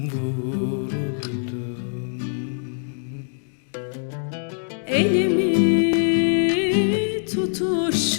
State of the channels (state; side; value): silent; right; digital silence